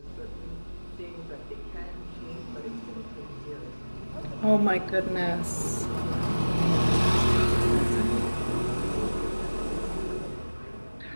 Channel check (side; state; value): both; inverted; correlation -1.00